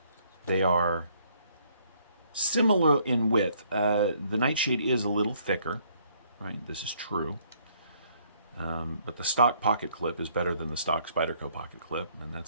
They are similar in width. The Nightshade is a little thicker, right? This is true. But the stock pocket clip is better than the stock Spyderco pocket clip, and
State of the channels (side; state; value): both; inverted; correlation -0.66